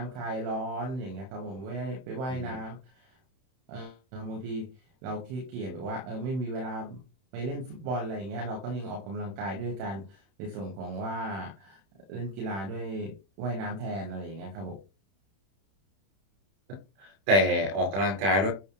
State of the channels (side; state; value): left; late; 31 ms